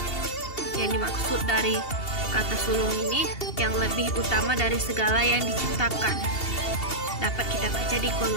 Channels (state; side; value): late; right; 2.7 ms